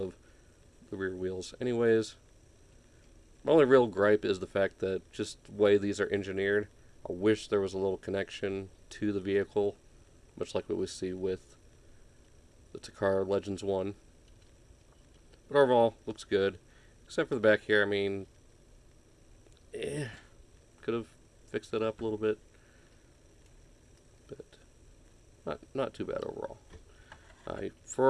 the rear wheels anyways. My only real gripe is the fact that just the way these are engineered, I wish there was a little connection to the vehicle, much like what we see with the Takara Legends 1. But overall, looks good. Except for the back here, I mean, could have fixed it up a little bit. But not too bad overall.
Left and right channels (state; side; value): identical; both; correlation 1.00